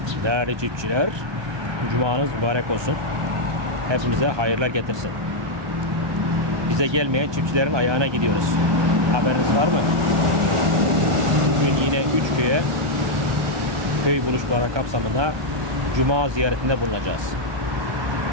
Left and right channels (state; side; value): late; left; 1.2 ms